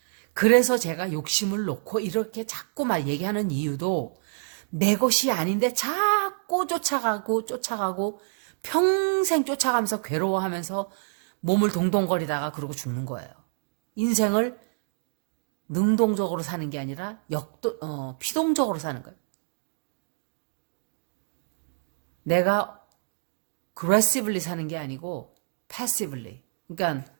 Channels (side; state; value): left; silent; digital silence